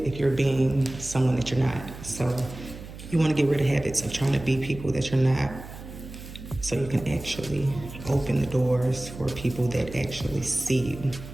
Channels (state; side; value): noise; right; hum, 13 dB below the sound